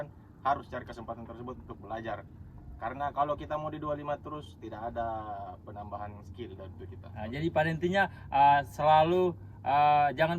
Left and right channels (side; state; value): both; identical; correlation 1.00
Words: harus cari kesempatan tersebut untuk belajar. Karena kalau kita mau di 25 terus, tidak ada penambahan skill dari itu kita. Jadi pada intinya selalu